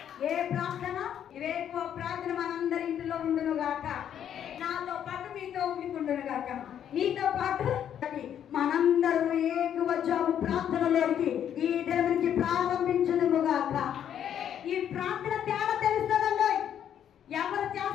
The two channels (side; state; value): right; quieter; 9.6 dB